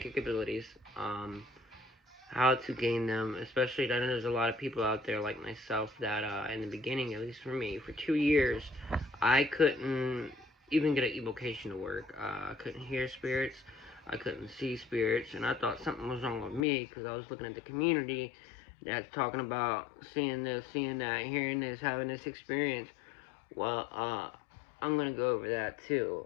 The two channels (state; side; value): drops out; right; at 16.7 s